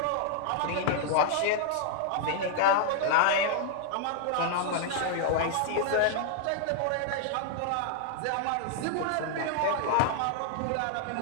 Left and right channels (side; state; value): both; different; correlation 0.00